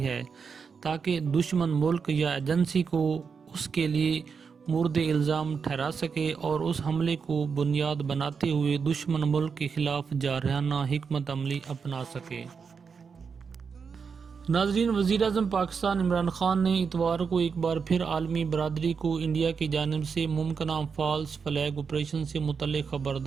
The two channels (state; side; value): quieter; left; 5.8 dB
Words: ہے تاکہ دشمن ملک یا ایجنسی کو اس کے لیے مورد الزام ٹھہرا سکے اور اس حملے کو بنیاد بناتے ہوئے دشمن ملک کے خلاف جارحانہ حکمت عملی اپنا سکے۔ ناظرین، وزیر اعظم پاکستان عمران خان نے اتوار کو ایک بار پھر عالمی برادری کو انڈیا کی جانب سے ممکنہ فالس فلیگ آپریشن سے متعلق